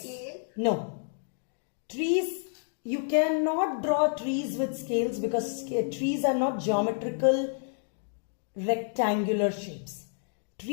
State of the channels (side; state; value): right; silent; digital silence